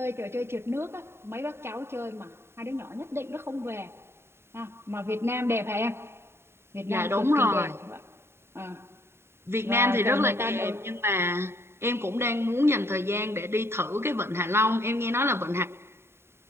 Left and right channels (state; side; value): late; left; 0.12 ms